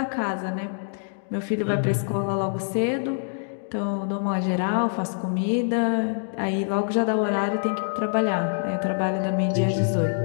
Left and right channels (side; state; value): right; silent; digital silence